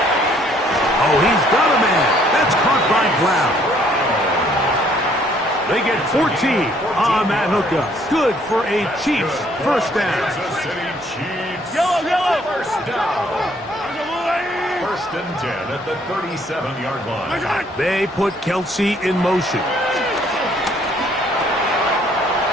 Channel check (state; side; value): normal; both; correlation 0.64